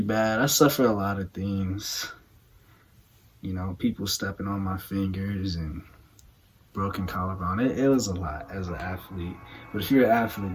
bad. I suffered a lot of things. You know, people stepping on my fingers and broken collarbone. It was a lot as an athlete. But if you're an athlete,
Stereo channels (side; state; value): both; identical; correlation 1.00